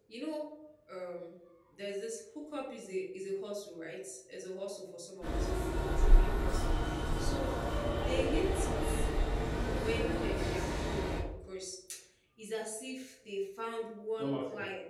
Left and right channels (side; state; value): both; identical; correlation 1.00